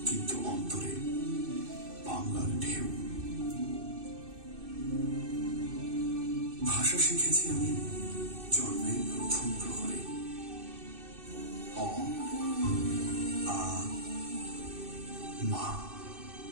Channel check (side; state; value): left; late; 2.6 ms